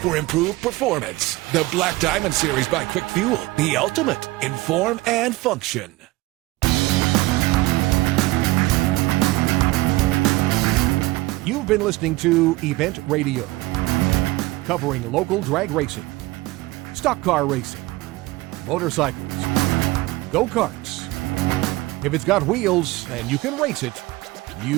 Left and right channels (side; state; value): left; quieter; 20.0 dB